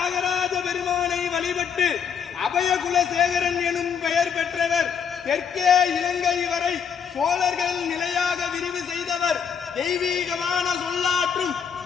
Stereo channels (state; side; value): quieter; right; 7.3 dB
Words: பெருமானை வழிபட்டு அபயகுலசேகரன் எனும் பெயர் பெற்றவர். தெற்கே இலங்கை வரை சோழர்கள் நிலையாக விரிவு செய்தவர். தெய்வீகமான சொல்லாற்றும்